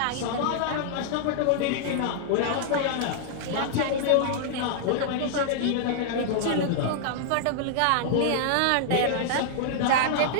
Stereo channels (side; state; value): both; different; correlation -0.01